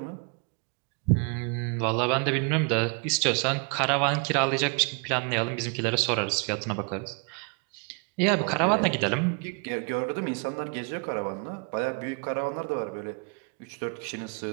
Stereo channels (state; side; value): quieter; left; 35.8 dB